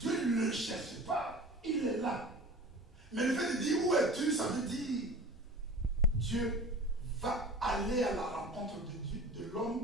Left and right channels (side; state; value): both; normal; correlation 0.38